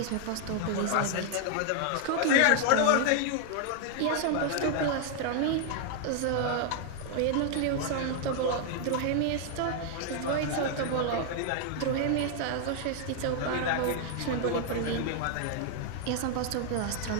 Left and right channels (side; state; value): both; different; correlation 0.00